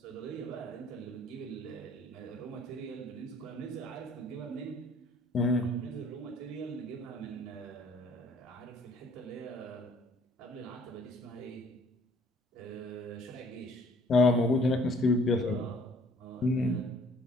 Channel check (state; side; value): normal; both; correlation 0.57